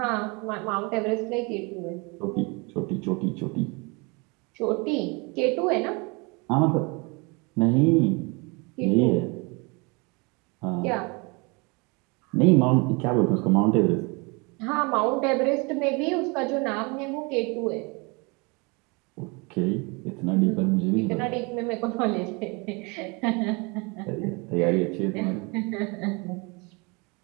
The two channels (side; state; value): left; quieter; 29.2 dB